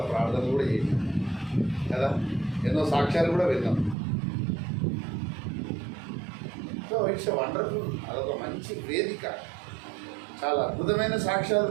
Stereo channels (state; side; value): drops out; left; at 4.0 s